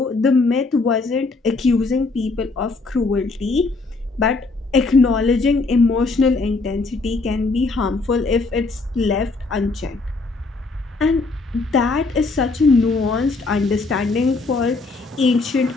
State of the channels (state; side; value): quieter; right; 3.7 dB